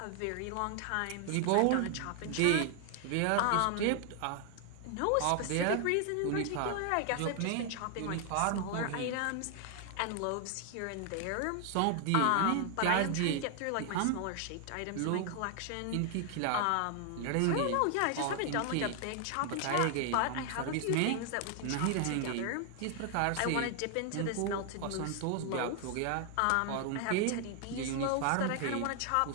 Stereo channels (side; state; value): both; different; correlation 0.00